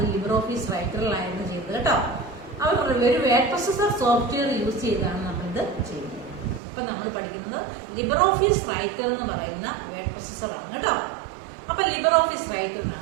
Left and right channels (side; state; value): left; drops out; at 6.6 s